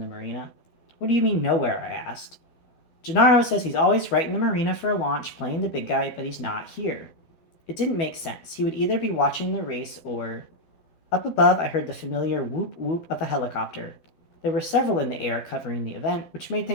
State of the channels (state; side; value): late; right; 12 ms